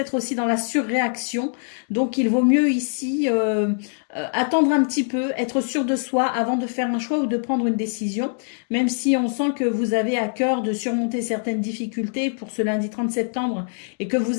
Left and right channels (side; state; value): right; silent; digital silence